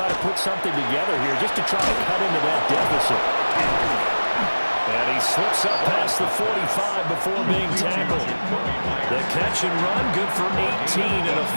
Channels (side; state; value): both; inverted; correlation -1.00